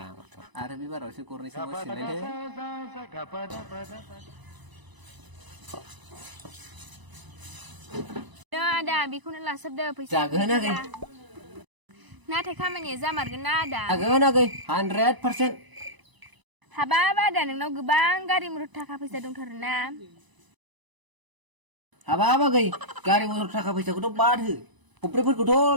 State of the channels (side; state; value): left; late; 1.0 ms